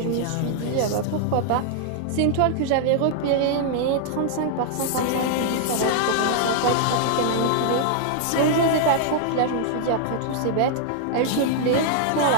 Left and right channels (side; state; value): both; different; correlation -0.01